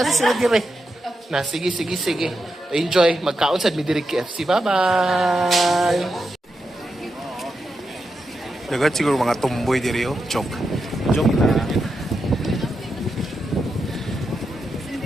sila dire. Na, sige. Enjoy. Magkaon sa Midiri KFC. Bye-bye! Dagat siguro mga tumboy diri oh. Joke na.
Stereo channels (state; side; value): normal; both; correlation 0.87